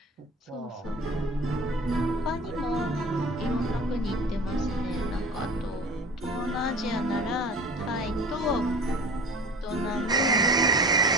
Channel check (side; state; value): both; normal; correlation 0.40